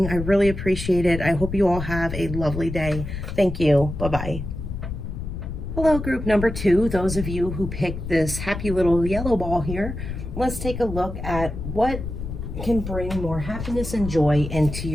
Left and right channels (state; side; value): noise; left; rumble, 7 dB below the sound